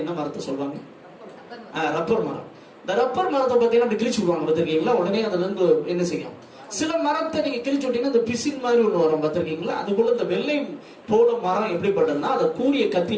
என்ன மரத்தை சொல்லுவாங்க? ரப்பர் மரம். இந்த ரப்பர் மரத்தை பார்த்தீங்கன்னா கிழிச்சு விடுவாங்க, பார்த்திருக்கீங்களா? உடனே அதுல இருந்து என்ன செய்யும்? சில மரத்தை நீங்க கிழிச்சு விட்டீங்கன்னா இந்த பிசின் மாதிரி ஒண்ணு வரும், பார்த்திருக்கீங்களா? அது போல இந்த வெள்ளை போல மரம் எப்படிப்பட்டதுன்னா, அதை கூரிய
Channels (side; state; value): both; identical; correlation 1.00